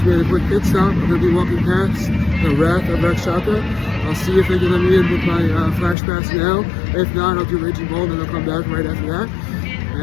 made a quick pit stop. I'm going to be walking past the Wrath of Rakshasa. I'll see if they can let me in with my flash pass now. If not, I'll do Raging Bull and then I'll come back right after that.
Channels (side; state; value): right; drops out; at 6.0 s